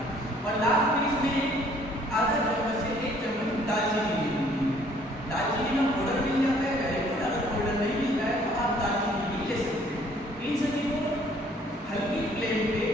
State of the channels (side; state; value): both; normal; correlation 0.60